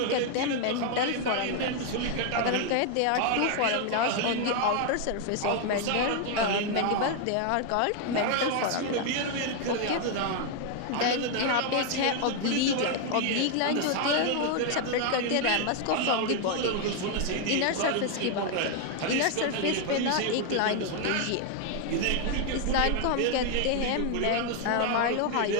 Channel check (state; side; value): different; both; correlation 0.01